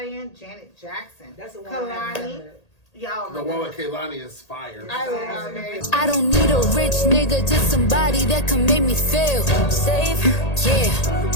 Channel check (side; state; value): right; late; 1.8 ms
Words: Janet Jackson, That's the one I haven't Kalani. heard. Y'all, The one with Kehlani is fire. I love it. I don't need a rich nigga, just somebody that can make me feel safe. Yeah,